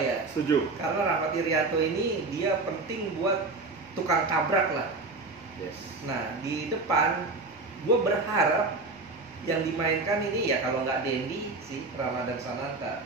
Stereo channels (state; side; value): quieter; left; 3.5 dB